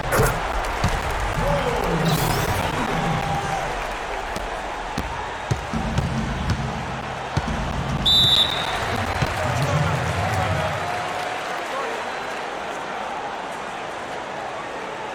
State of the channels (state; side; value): identical; both; correlation 1.00